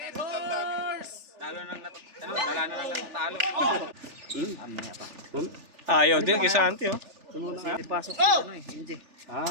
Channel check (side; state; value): left; late; 3.4 ms